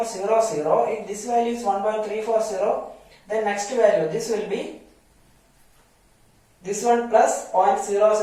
if this value is 1.340, then next value, this will be this one plus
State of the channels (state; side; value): identical; both; correlation 1.00